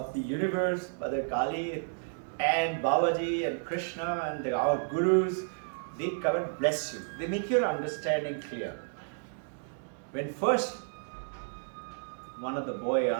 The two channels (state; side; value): silent; left; digital silence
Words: the Universe, Mother Kali, and Babaji and Krishna and our Gurus, they come and bless you. They make your understanding clear. When first one of the boys